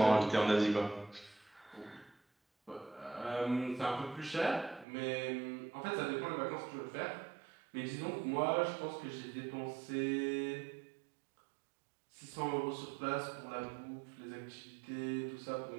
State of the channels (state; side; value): drops out; left; at 4.9 s